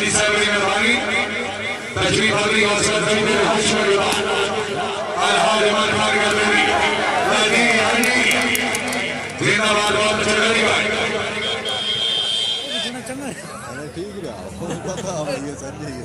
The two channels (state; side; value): identical; both; correlation 1.00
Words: साहब की मेहरबानी तशरीफ आवरी और सदर हश्र अलहाज उमर खान गर्देनी जिंदाबाद बहुत अच्छा लगी भाई ठीक है पता ये संजय की